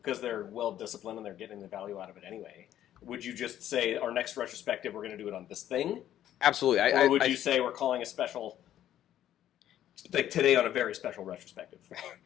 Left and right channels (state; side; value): quieter; right; 11.7 dB